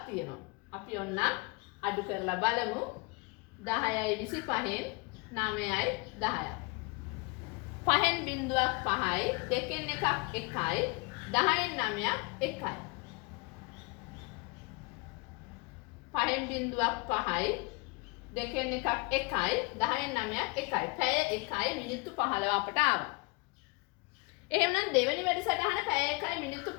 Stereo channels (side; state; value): right; quieter; 27.6 dB